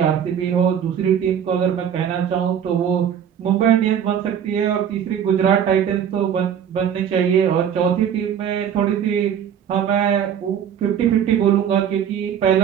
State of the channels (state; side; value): quieter; left; 8.7 dB